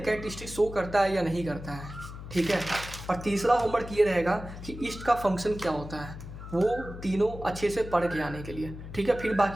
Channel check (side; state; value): left; noise; hum, 11 dB below the sound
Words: कैरेक्टरिस्टिक शो करता है या नहीं करता है, ठीक है। और तीसरा होमवर्क ये रहेगा कि ईस्ट का फंक्शन क्या होता है, वो तीनों अच्छे से पढ़ के आने के लिए, ठीक है। फिर